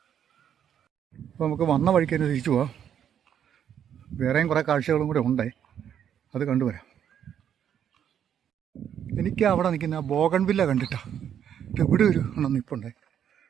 അപ്പോൾ നമുക്ക് വന്ന വഴിക്ക് തന്നെ തിരിച്ചു പോവാം. വേറെയും കുറേ കാഴ്ചകളും കൂടെ ഉണ്ടേ, അത് കണ്ടുവരാം. എനിക്ക് അവിടെ നിൽക്കുന്ന ആ ബോഗൺവില്ല കണ്ടിട്ടാ ഇവിടെ ഒരു എണ്ണം നിൽപ്പുണ്ടേ.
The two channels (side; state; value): left; quieter; 9.2 dB